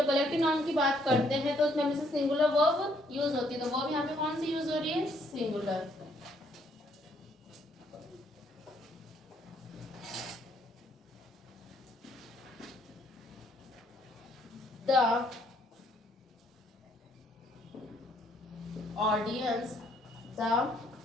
collective noun की बात करते हैं तो उसमें हमेशा सिंगुलर वर्ब यूज होती है. तो वर्ब यहाँ पे कौन सी यूज हो रही है? Singular. The audience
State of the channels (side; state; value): both; normal; correlation 0.68